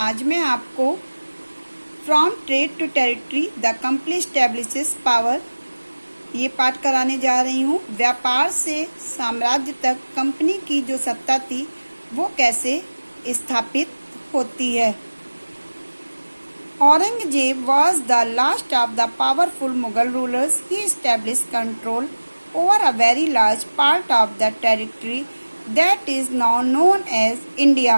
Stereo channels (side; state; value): both; inverted; correlation -1.00